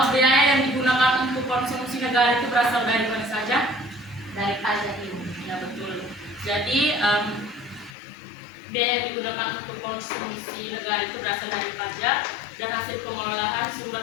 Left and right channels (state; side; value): drops out; right; at 8.0 s